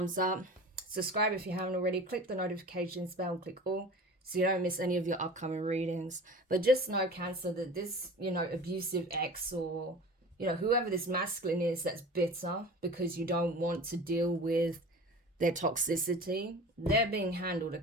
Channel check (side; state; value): both; normal; correlation 0.38